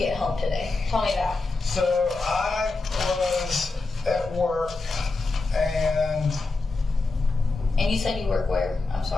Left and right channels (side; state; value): right; quieter; 3.6 dB